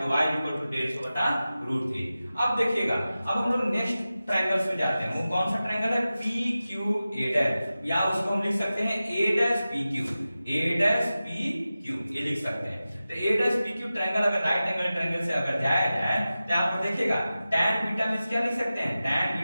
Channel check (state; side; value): inverted; both; correlation -0.95